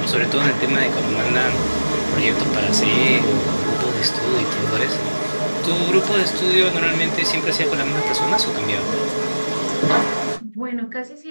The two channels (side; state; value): both; inverted; correlation -1.00